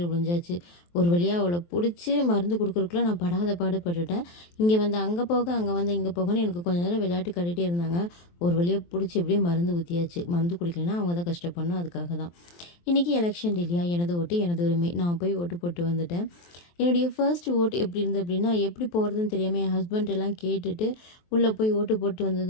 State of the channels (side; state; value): right; late; 23 ms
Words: விழுந்தாச்சு. ஒரு வழியாக அவளை பிடிச்சி மருந்து கொடுக்குறக்குள்ள நான் படாத பாடுபட்டுட்டேன். இங்கே வந்து அங்கே போக, அங்கே வந்து இங்கே போகன்னு எனக்கு கொஞ்சம் நேரம் விளையாட்டு காட்டிகிட்டே இருந்தாங்க. ஒரு வழியாக பிடிச்சி எப்படியே மருந்து ஊற்றியாச்சு. மருந்து குடிக்கலைன்னா அவங்க தான் கஷ்டப்படணும். அதுக்காக தான் இன்றைக்கி எலெக்ஷன் இல்லையா, எனது ஓட்டு எனது உரிமை. நான் போய் ஓட்டு போட்டு வந்துட்டேன். என்னுடைய ஃபர்ஸ்ட் ஓட்டு எப்படி இருந்தது அப்படின்னா, எப்படி போகிறதுன்னு தெரியாமல் என் ஹஸ்பண்ட் எல்லாம் கேட்டுட்டு உள்ளே போய் ஓட்டு போட்டு